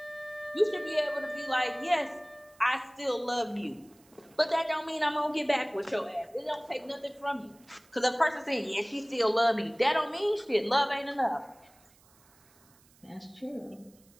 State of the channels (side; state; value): right; noise; hiss, 29 dB below the sound